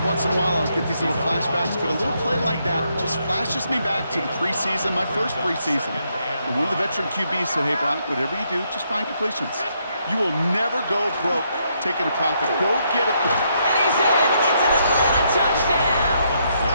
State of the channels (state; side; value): inverted; both; correlation -0.76